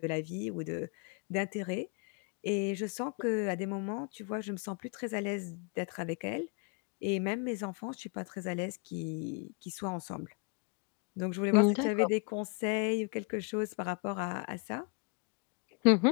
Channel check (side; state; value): right; quieter; 35.3 dB